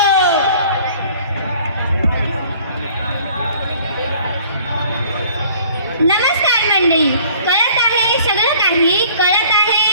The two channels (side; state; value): both; inverted; correlation -0.53